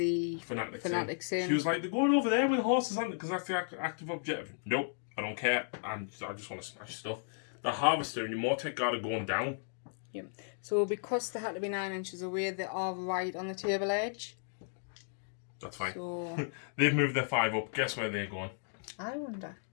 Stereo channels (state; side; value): silent; right; digital silence